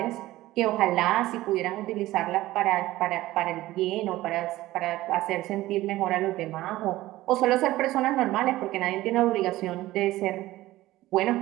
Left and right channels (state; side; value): quieter; left; 16.7 dB